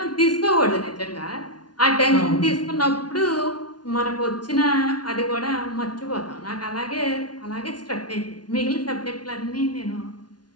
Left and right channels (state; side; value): late; right; 0.69 ms